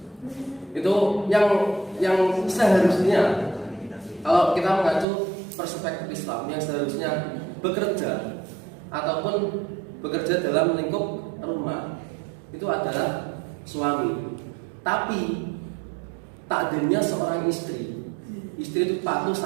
itu yang seharusnya, kalau kita mengacu perspektif Islam, yang seharusnya bekerja ataupun bekerja dalam lingkup rumah itu adalah suami. Tapi takdirnya seorang istri itu patuh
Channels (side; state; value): left; drops out; at 5.1 s